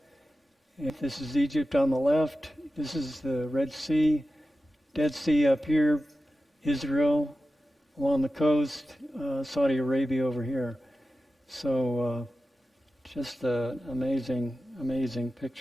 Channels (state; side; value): normal; both; correlation 0.93